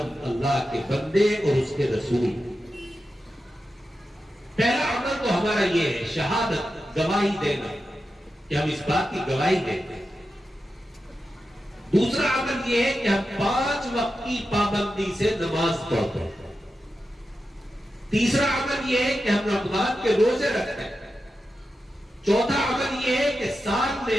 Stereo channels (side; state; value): both; normal; correlation 0.90